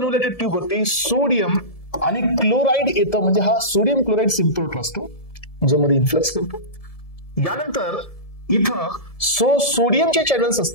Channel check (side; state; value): right; late; 1.7 ms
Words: ट्यूब वरती सोडियम आणि क्लोराइड येतं, म्हणजे हा सोडियम क्लोराइड सिम्पल असतो ज्यामध्ये इन्फ्लक्स करतो. यानंतर इथं सोडियमचे चॅनल्स